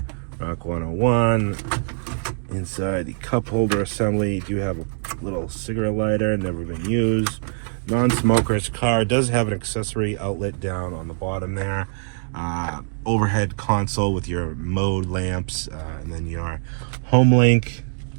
Rock 101. Inside the cup holder assembly, you do have a little cigarette lighter, never been used. Non-smoker's car does have an accessory outlet down on the bottom there. Overhead console with your mode lamps, and then your home link.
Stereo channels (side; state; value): left; silent; digital silence